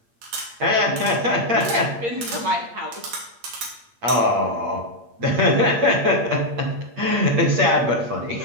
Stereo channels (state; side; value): late; left; 8.6 ms